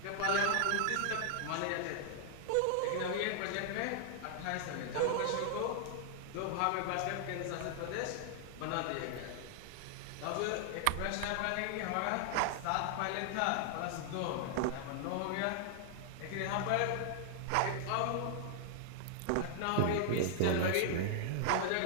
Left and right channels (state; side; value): different; both; correlation -0.01